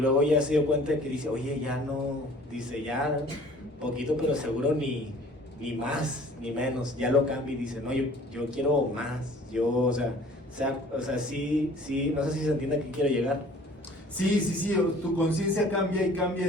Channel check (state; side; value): normal; both; correlation 0.51